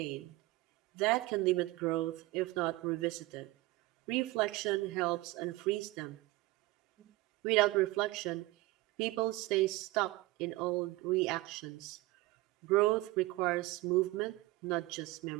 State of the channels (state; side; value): quieter; left; 19.9 dB